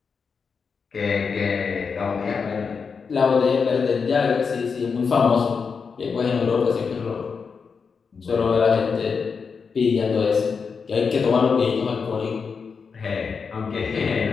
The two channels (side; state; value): right; quieter; 5.6 dB